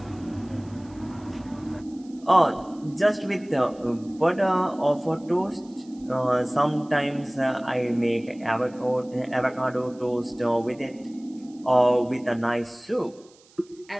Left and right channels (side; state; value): right; noise; hiss, 28 dB below the sound